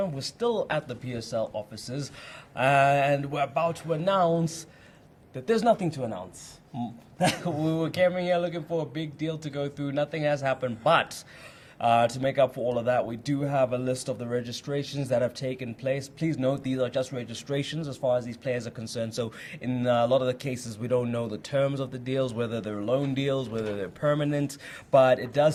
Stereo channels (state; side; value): identical; both; correlation 1.00